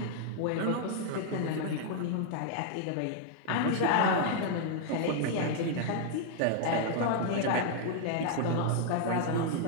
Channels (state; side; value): different; both; correlation 0.00